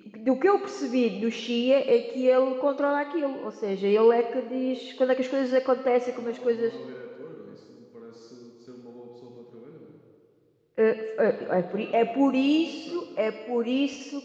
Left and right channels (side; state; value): both; identical; correlation 1.00